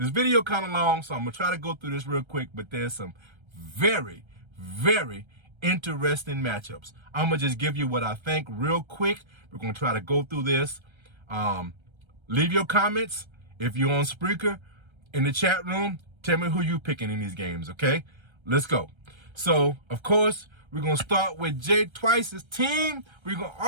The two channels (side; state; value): left; late; 1.3 ms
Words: video kind of long, so I'm going to try to go through this real quick, but there's some very, very interesting matchups. I'm going to just give you what I think real quick. We're going to try to go through this. Leave your comments. If you're on Spreaker in the chat room, tell me who you picking in these games, okay? Let's go. So, of course, we're going to start with Jay Twice's team. We're going to